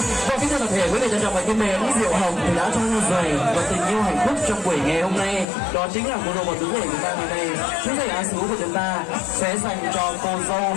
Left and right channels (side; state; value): right; drops out; at 5.5 s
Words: Và kính thưa toàn thể quý vị trân trọng và kính mến, Diệu Hồng thì đã cho ra giày và tình yêu hạnh phúc trong buổi ngày hôm nay. Đó chính là cô dâu và chú rể của ta ngày nay. Chú rể Á Xú của chúng ta sẽ dành cho cô dâu